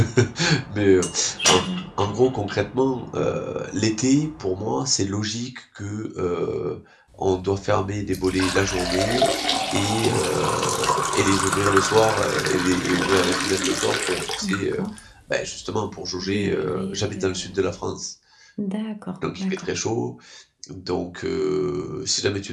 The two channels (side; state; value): both; identical; correlation 1.00